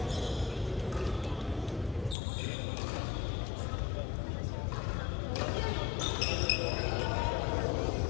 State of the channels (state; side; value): drops out; right; at 2.1 s